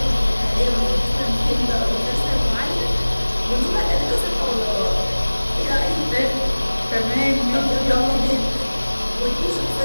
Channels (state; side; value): inverted; both; correlation -1.00